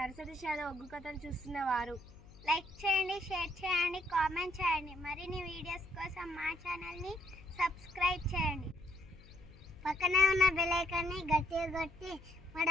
shallow ఒగ్గు కథలు చూస్తున్నవారు like చేయండి, share చేయండి, కామెంట్ చేయండి. మరిన్ని వీడియోస్ కోసం మా ఛానల్ని సబ్స్క్రైబ్ చేయండి. పక్కనే ఉన్న బెల్ ఐకాన్ని గట్టిగా కొట్టి మా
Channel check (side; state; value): left; noise; hum, 21 dB below the sound